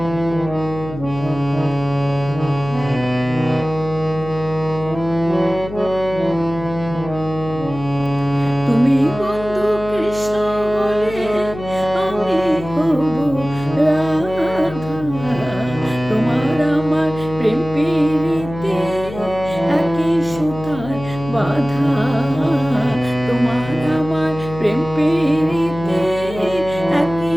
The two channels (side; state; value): left; noise; hum, 12 dB below the sound